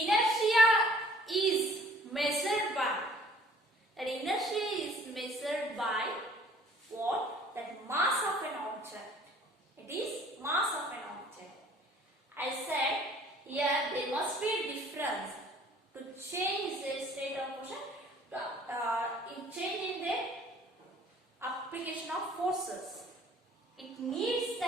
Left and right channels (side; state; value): both; normal; correlation 0.55